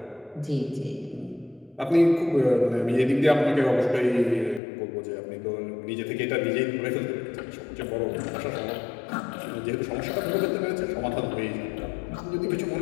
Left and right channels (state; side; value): drops out; right; at 4.6 s